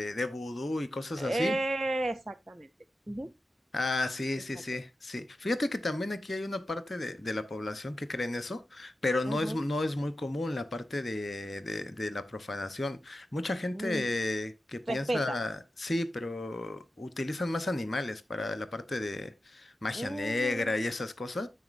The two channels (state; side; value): normal; both; correlation 0.92